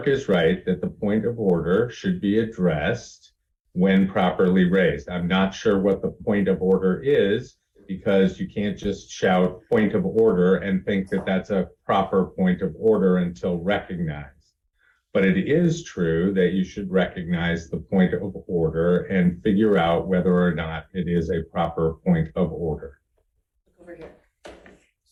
is right that the point of order should be addressed when properly raised. I'm not sure what the point of order is because you can't just shout point of order and think that that's a proper point of order until recognized. But it is true that you should recognize the point of order and figure out whether or not it is a proper point of order. Over here.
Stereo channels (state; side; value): identical; both; correlation 1.00